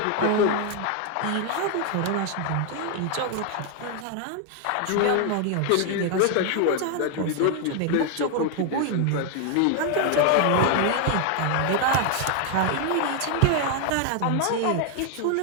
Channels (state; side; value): different; both; correlation 0.00